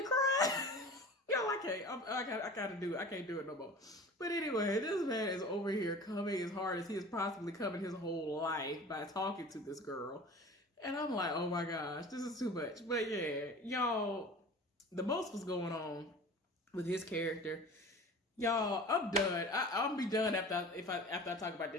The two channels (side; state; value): both; normal; correlation 0.39